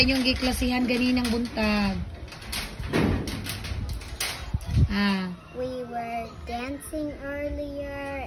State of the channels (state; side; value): identical; both; correlation 1.00